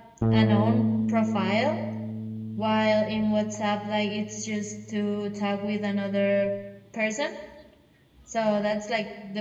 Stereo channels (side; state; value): both; identical; correlation 1.00